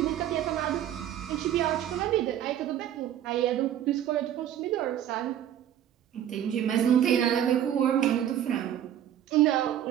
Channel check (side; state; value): left; quieter; 10.8 dB